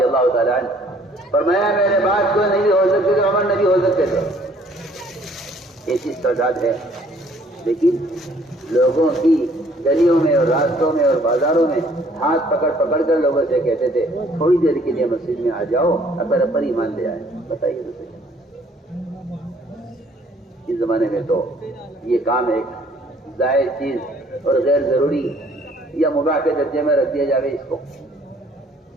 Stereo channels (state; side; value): normal; both; correlation 0.60